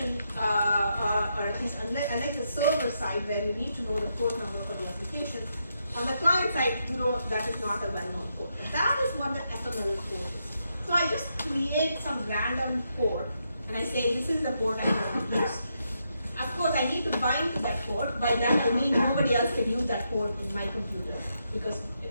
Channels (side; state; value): both; inverted; correlation -0.81